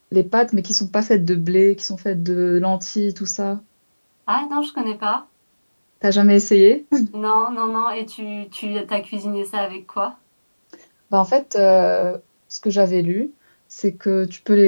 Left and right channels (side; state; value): both; inverted; correlation -1.00